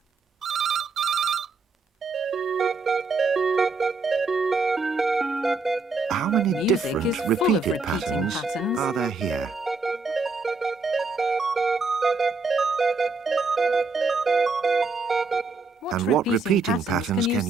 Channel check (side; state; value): left; quieter; 3.9 dB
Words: How many Music different is full of repeated repeating patterns patterns. are there here? And what repeating patterns can